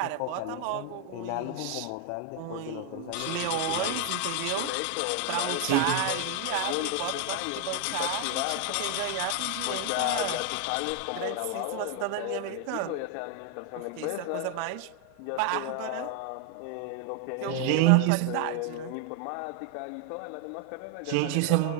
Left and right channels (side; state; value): both; different; correlation 0.01